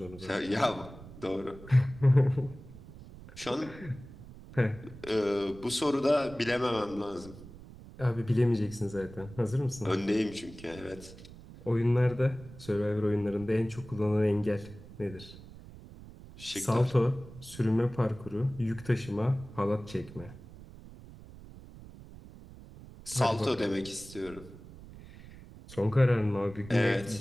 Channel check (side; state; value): right; noise; rumble, 17 dB below the sound